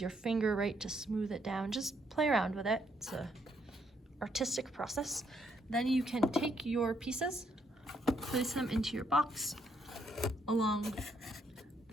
your finger, right, to smooth it down. Just play around with it. It's a artistic process. Then you can take your pieces, place them into your box along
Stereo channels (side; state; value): both; normal; correlation 0.73